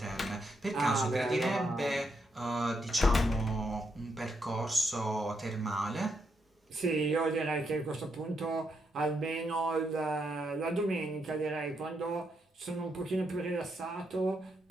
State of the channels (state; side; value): normal; both; correlation 0.80